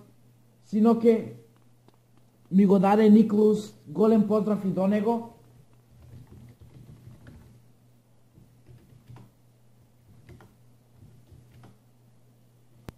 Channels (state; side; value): identical; both; correlation 1.00